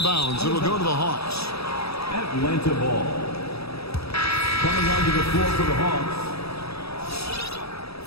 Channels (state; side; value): late; right; 0.77 ms